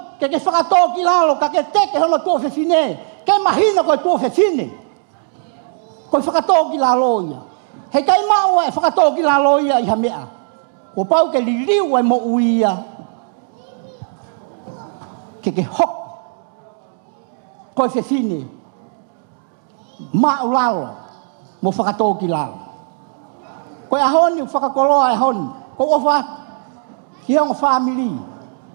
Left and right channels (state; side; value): silent; left; digital silence